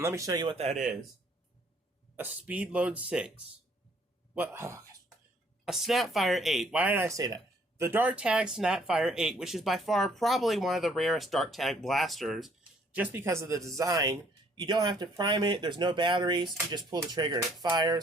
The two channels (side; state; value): both; normal; correlation 0.63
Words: let me show you what that is. A Speed Load 6. What? Oh, a Snapfire 8. Why did I say that? The Dart Tag Snapfire 8, which is by far probably one of the rarest Dart Tag blasters, just because of the design. You don't have to prime it, there's no batteries, you just pull the trigger and it